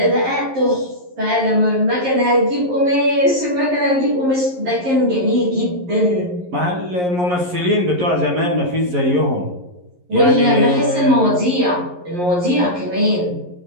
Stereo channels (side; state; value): left; late; 11 ms